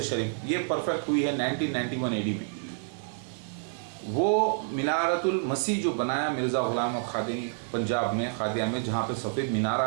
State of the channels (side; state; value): left; silent; digital silence